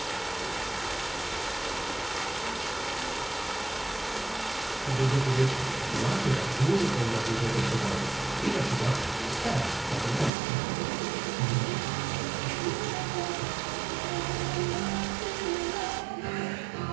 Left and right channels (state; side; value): drops out; left; at 10.3 s